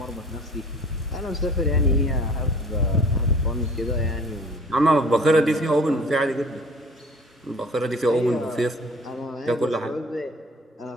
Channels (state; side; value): normal; both; correlation 0.48